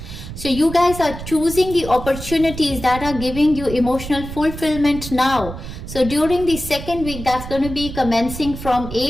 So you guys are choosing the opportunities that are giving you emotional fulfillment now. So during the second week, that's going to be commencing from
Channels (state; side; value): noise; right; rumble, 10 dB below the sound